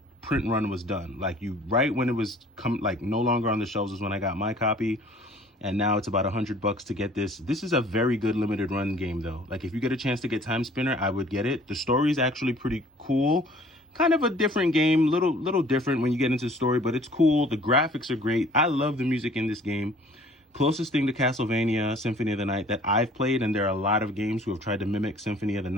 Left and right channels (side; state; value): both; normal; correlation 0.53